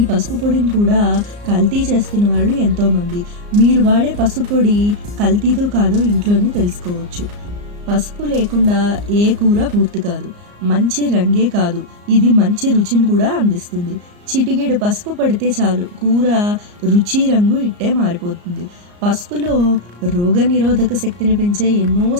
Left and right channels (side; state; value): left; late; 34 ms